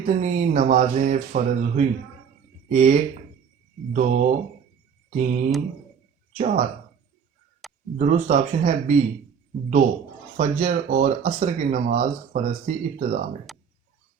نمازیں فرض ہوئیں؟ 1، 2، 3، 4۔ درست آپشن ہے بی، 2۔ فجر اور عصر کی نماز فرض تھی ابتدا میں۔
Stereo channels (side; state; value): left; quieter; 7.0 dB